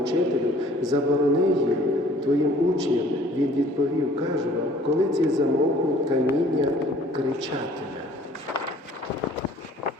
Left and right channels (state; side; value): normal; both; correlation 0.54